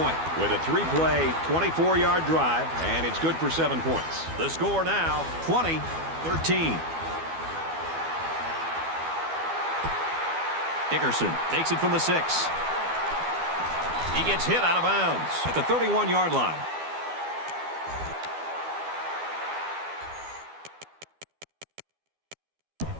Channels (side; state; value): left; late; 12 ms